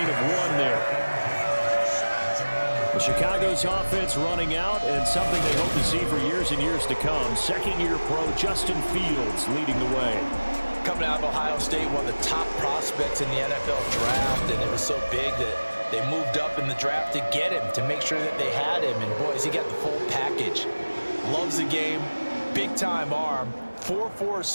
of 1 there. The Chicago's offense running out, and something they hope to see for years and years to come. Second-year pro Justin Fields leading the way. Coming out of Ohio State, one of the top prospects in the NFL draft, and it was so big that they moved up in the draft to get him, to make sure that they had him. And, boys, he got the full package. Loves the game, big-time arm. 4.4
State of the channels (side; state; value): both; inverted; correlation -1.00